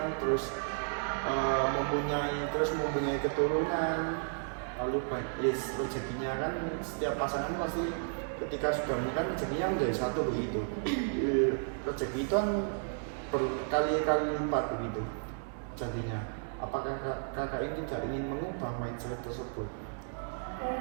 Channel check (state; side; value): silent; left; digital silence